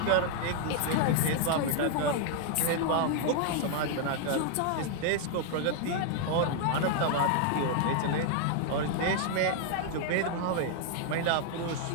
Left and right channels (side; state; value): both; different; correlation 0.00